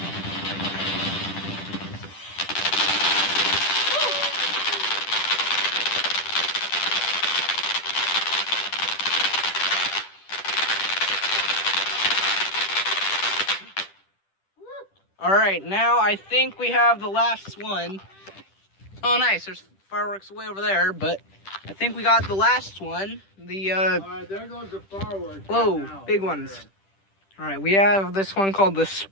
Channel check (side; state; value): right; late; 10 ms